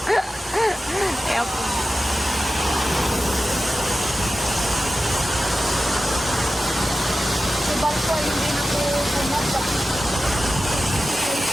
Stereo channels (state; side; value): normal; both; correlation 0.93